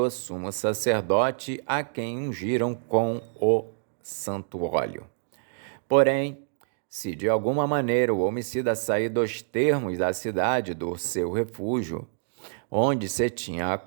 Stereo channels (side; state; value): left; silent; digital silence